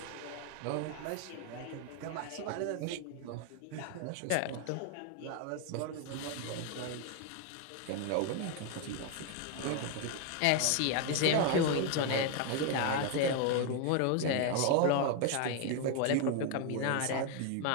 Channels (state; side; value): different; both; correlation 0.01